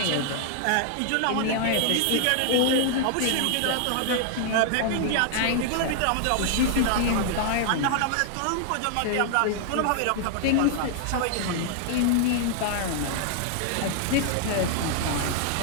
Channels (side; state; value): both; different; correlation 0.00